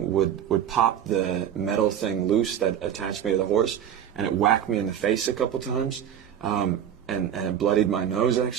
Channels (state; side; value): quieter; left; 9.6 dB